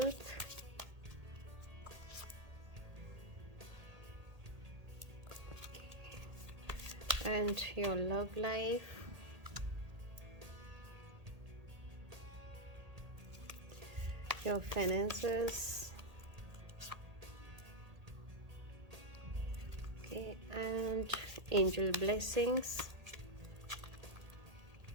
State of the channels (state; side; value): late; left; 1.8 ms